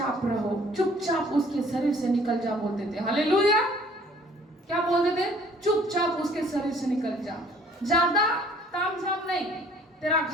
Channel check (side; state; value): both; normal; correlation 0.56